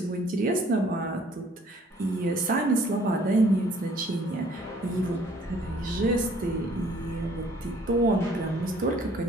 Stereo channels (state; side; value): normal; both; correlation 0.59